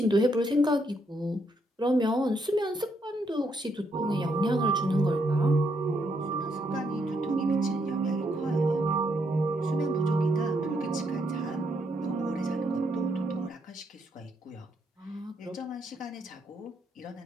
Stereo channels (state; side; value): normal; both; correlation 0.76